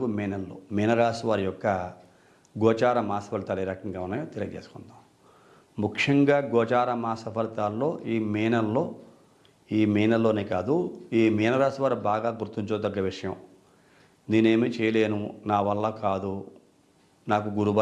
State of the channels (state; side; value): identical; both; correlation 1.00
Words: మే నెలలో మీనరాశి వారి యొక్క గోచార మాస ఫలితాలు ఏ రకంగా ఉన్నాయో తెలియజేసుకుందాం. ముఖ్యంగా గోచార మాస ఫలితాల్లో ఈ మే నెలలోనే కాదు, ఈ మీనరాశి వారు బాగా గుర్తుంచుకోదగ్గ విషయం, నేనేమీ చేయలేను, నా వల్ల కాదు, నాకు